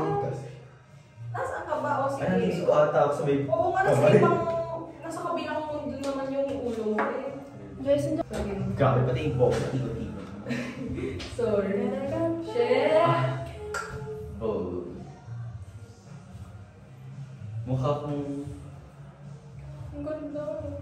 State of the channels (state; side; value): identical; both; correlation 1.00